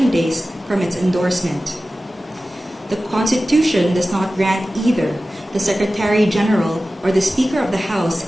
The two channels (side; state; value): both; normal; correlation 0.96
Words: days from its endorsement. The Constitution does not grant either the Secretary General or the Speaker of the